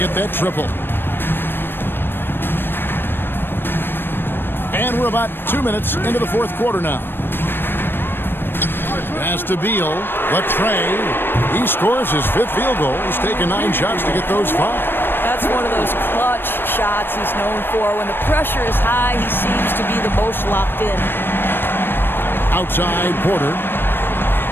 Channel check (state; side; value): late; right; 0.099 ms